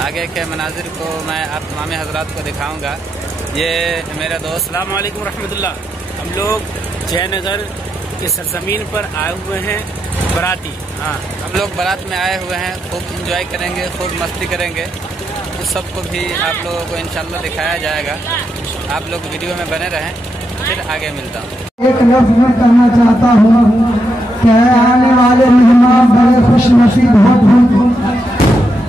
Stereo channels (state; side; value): normal; both; correlation 0.83